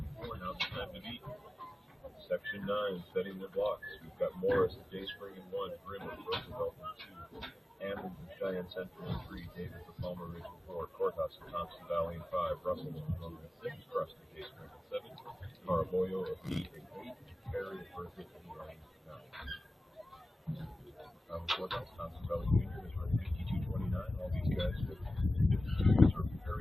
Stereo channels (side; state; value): both; normal; correlation 0.96